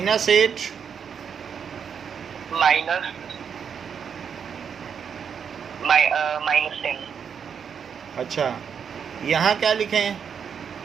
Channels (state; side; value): quieter; left; 7.1 dB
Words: -8 -10। अच्छा यहाँ क्या लिखें?